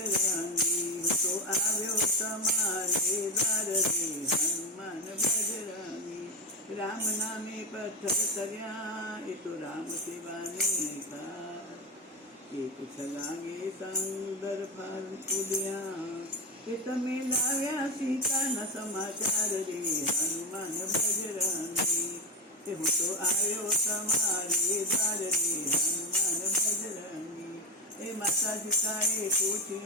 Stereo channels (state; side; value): normal; both; correlation 0.15